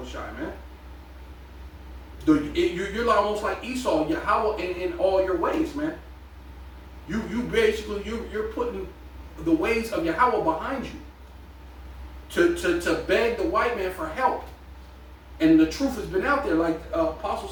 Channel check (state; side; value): identical; both; correlation 1.00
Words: Shai, man. You're almost like Esau, Yahweh in all your ways, man. You basically you're putting the ways of Yahweh behind you to beg the white man for help. And the truth has been out there, like Apostle